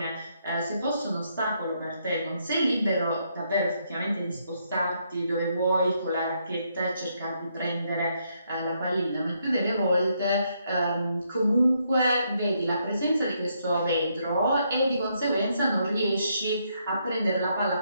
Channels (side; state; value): both; inverted; correlation -0.75